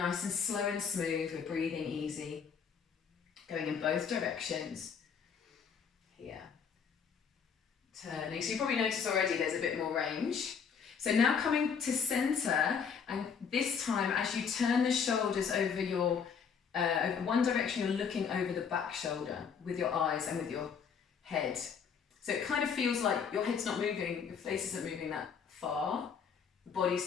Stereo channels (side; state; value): right; quieter; 6.6 dB